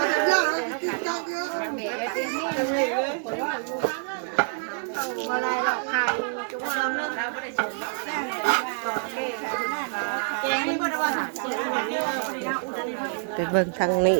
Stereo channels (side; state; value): left; silent; 60 dB below the other